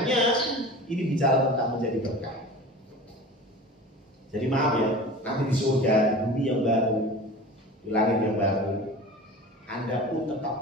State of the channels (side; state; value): both; normal; correlation 0.36